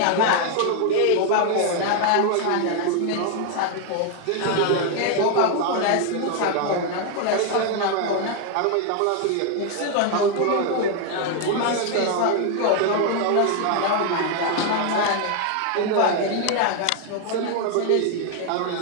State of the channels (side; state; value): both; different; correlation 0.00